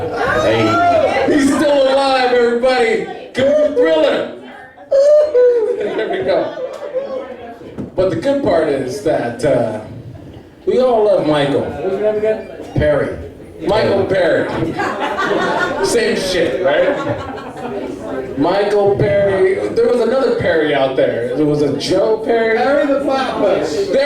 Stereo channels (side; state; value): both; identical; correlation 1.00